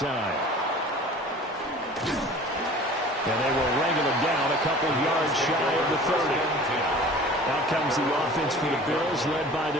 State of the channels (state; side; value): normal; both; correlation 0.44